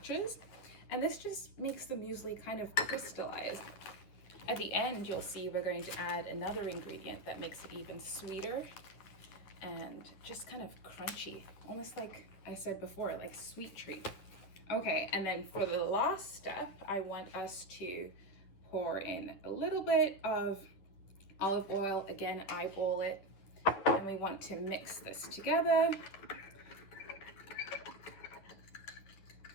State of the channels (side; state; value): right; late; 10 ms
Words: And this just makes the muesli kind of crystallize. At the end, you'll see we're going to add another ingredient that makes it even sweeter and just kind of crunchy, almost like I said before, like sweet treat. Okay, and then for the last step, I want us to pour in a little bit of olive oil. Again, eyeball it, and we want to mix this together.